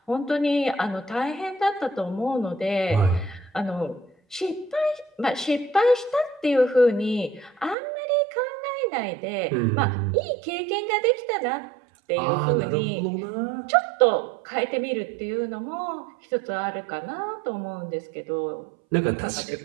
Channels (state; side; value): drops out; left; at 7.8 s